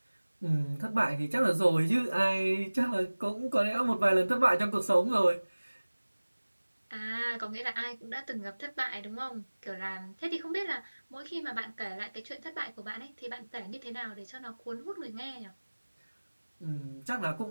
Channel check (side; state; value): both; inverted; correlation -1.00